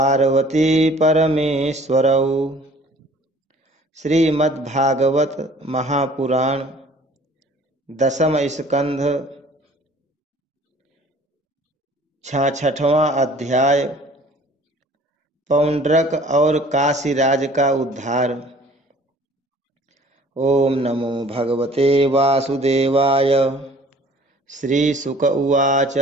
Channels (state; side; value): normal; both; correlation 0.52